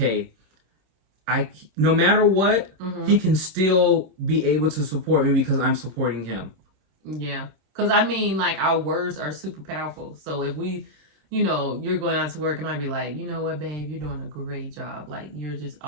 no matter what, he can still be able to support me because I'm supporting him. Yeah. Because, I mean, like, our words are super powerful. So if we, you're going out to work and I'd be like, you know what, babe, you're doing a great job. Like, you're just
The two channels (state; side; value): late; left; 26 ms